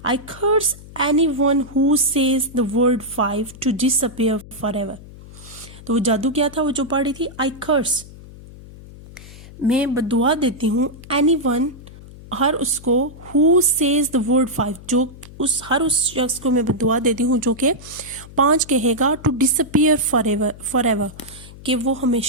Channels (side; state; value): left; noise; hum, 18 dB below the sound